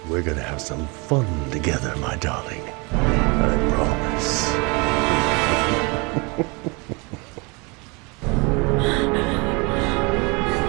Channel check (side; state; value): left; quieter; 28.9 dB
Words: We're gonna have some fun together, my darling. I promise.